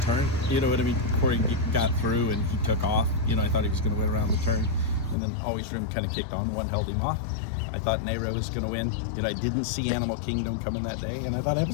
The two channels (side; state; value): right; drops out; at 5.2 s